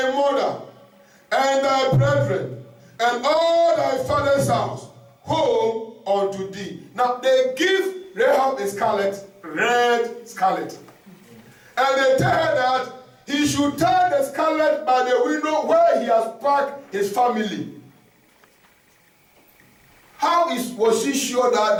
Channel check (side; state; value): both; identical; correlation 1.00